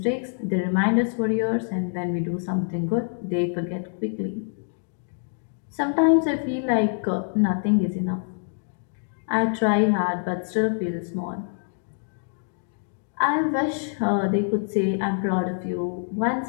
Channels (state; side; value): silent; right; digital silence